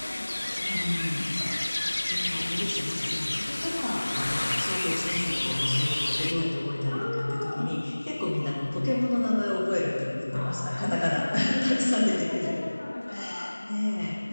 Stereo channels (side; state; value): both; inverted; correlation -1.00